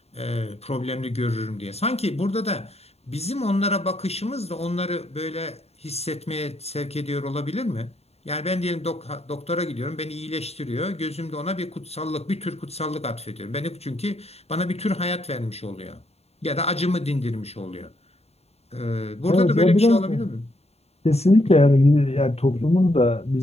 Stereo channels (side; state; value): right; late; 0.30 ms